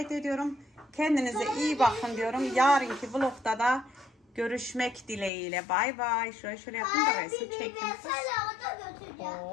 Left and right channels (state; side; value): drops out; right; at 5.3 s